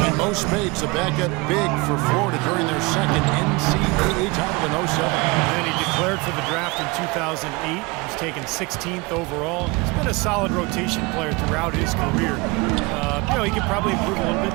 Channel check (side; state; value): left; quieter; 25.4 dB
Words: And Mo Spates, a backup big for Florida during their second NCAA title in 07. And he declared for the draft in 2008. He was taken 16th overall. He's been a solid rotation player throughout his career. He could probably improve a little